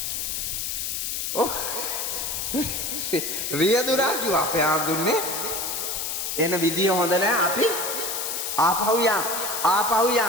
ඔව්. රියදුරා කිව්වා අපේ ආඳුන්නේ එන විදිය හොඳ නැහැ. අපි ආපහු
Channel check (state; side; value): noise; left; hiss, 2 dB below the sound